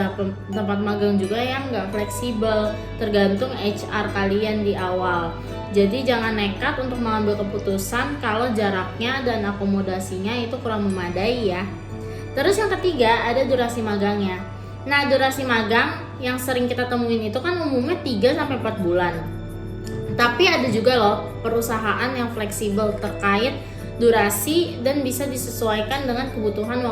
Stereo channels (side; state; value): both; identical; correlation 1.00